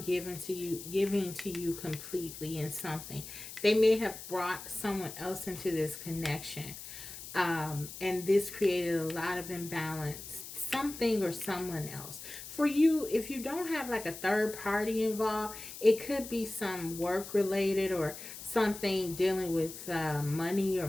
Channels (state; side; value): noise; left; hiss, 12 dB below the sound